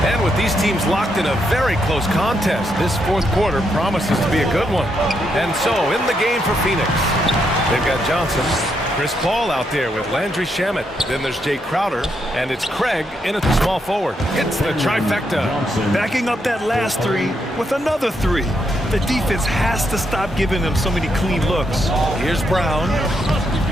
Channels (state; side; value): normal; both; correlation 0.79